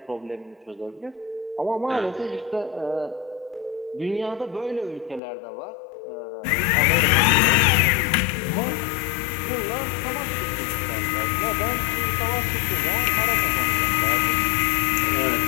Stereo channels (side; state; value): right; drops out; at 5.2 s